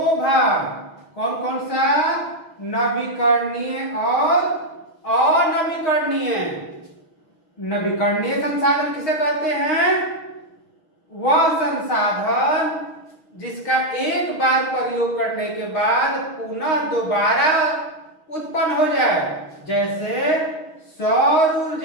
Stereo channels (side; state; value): right; late; 6.2 ms